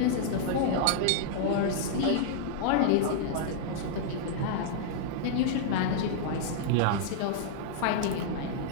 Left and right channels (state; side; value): different; both; correlation -0.01